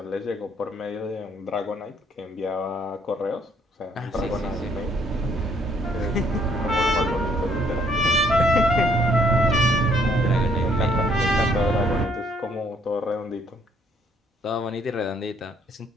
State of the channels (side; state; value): both; normal; correlation 0.66